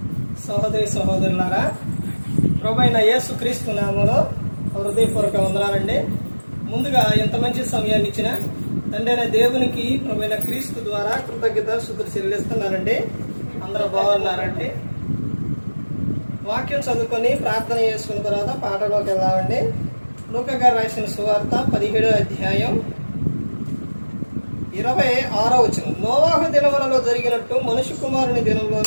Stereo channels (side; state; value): both; inverted; correlation -1.00